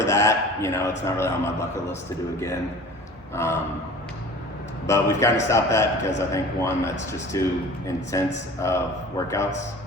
of that, it's not really on my bucket list to do again. But we've kind of stopped that because I think, one, that's just too intense of workouts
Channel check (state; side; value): normal; both; correlation 0.42